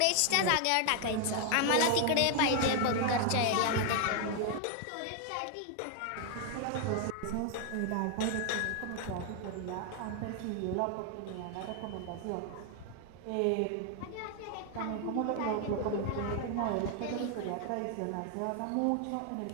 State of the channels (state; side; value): different; both; correlation 0.00